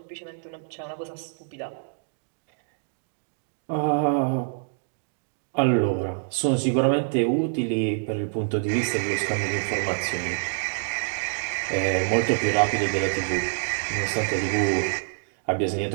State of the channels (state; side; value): silent; left; digital silence